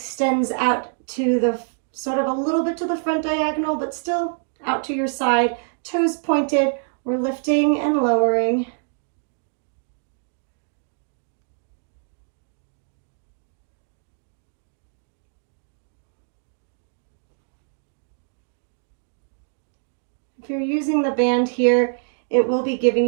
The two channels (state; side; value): silent; left; digital silence